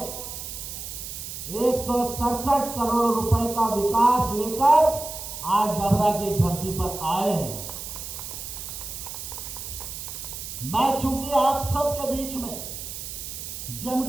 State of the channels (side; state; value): right; noise; hiss, 8 dB below the sound